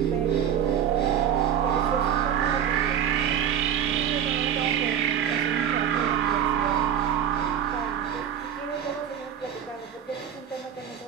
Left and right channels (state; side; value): quieter; left; 9.2 dB